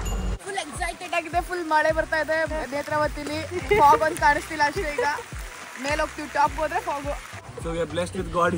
ಫುಲ್ ಎಕ್ಸೈಟೆಡ್ ಆಗಿದೆ. ಫುಲ್ ಮಳೆ ಬರ್ತಾ ಇದೆ ನೇತ್ರಾವತಿಲಿ. ಫಾಗ್ ಒಂದು ಕಾಣಿಸ್ತಿಲ್ಲ ಅಷ್ಟೇ. ಈಗ ಮೇಲೆ ಹೋಗ್ತೀವಿ, ಟಾಪ್ ಹೋದ್ರೆ fog. So we are blessed with God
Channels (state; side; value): identical; both; correlation 1.00